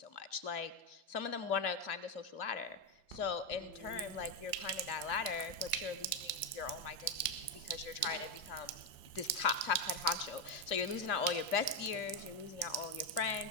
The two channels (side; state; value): right; late; 2.0 ms